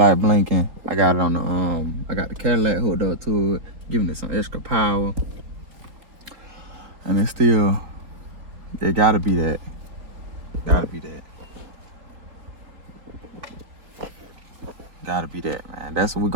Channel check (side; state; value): left; late; 4.1 ms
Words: blinking. I got it on the I got the Cadillac hooked up to it, giving it some extra power. And it's still, it gotta be that. Gotta be that. Gotta be that, man. That's what we're